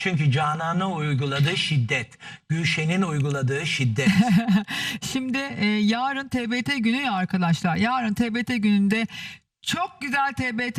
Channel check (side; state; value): both; identical; correlation 1.00